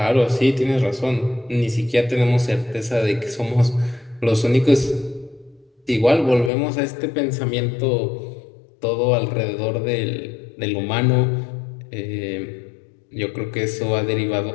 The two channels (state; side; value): drops out; right; at 6.5 s